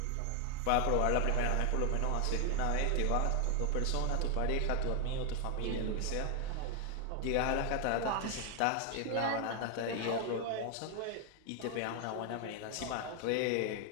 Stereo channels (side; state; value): both; different; correlation 0.01